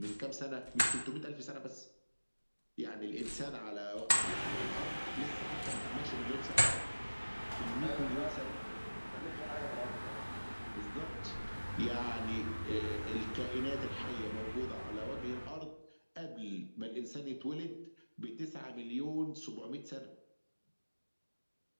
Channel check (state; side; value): inverted; both; correlation -1.00